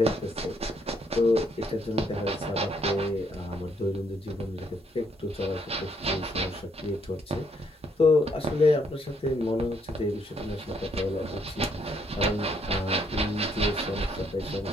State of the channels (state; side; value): normal; both; correlation 0.71